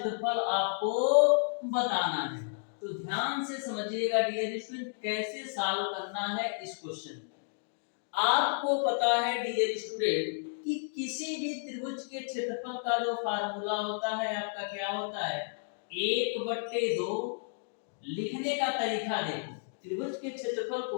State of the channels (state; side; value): silent; right; digital silence